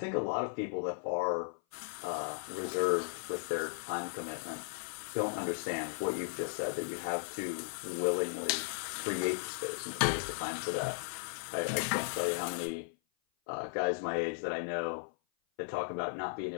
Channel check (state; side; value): silent; right; 54 dB below the other